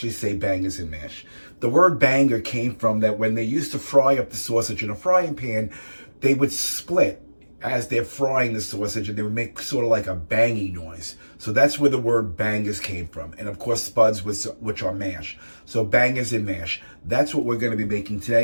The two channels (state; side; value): inverted; both; correlation -1.00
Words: say bangers and mash. The word banger came from that when they used to fry up the sausage in a frying pan, they would split as they're frying the sausage, and they would make sort of like a banging noise. So that's where the word bangers came from. And of course, spuds, which are mash. So bangers and mash. That's what we're going to be making